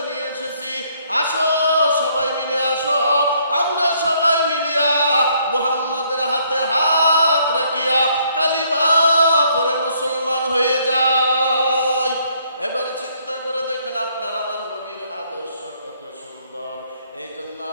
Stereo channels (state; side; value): inverted; both; correlation -0.67